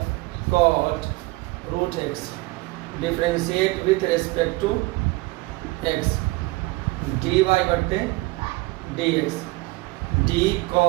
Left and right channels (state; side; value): quieter; left; 22.1 dB